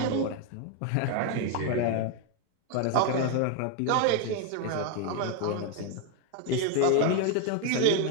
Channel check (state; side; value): different; both; correlation 0.01